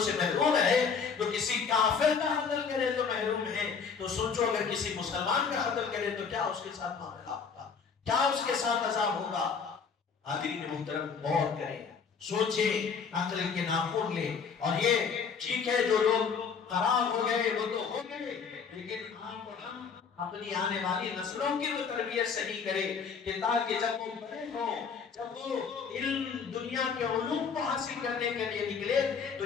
محروم ہے، تو کسی کافر کا قتل کرے تو محروم ہے، تو سوچو اگر کسی مسلمان کا قتل کرے تو کیا اس کے ساتھ معاملہ ہوگا، کیا اس کے ساتھ عذاب ہوگا۔ حاضرین محترم غور کریں، سوچیں، عقل کے ناخن لیں، اور یہ ٹھیک ہے جو لوگ خراب ہو گئے وہ تو ہو گئے، لیکن آپ اور ہم اپنی آنے والی نسلوں کی وہ تربیت صحیح کرے کہ تاکہ جب وہ بڑے ہوں، جب وہ علم دنیا کے علوم کو حاصل کرنے کے لیے نکلے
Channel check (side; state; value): right; quieter; 6.0 dB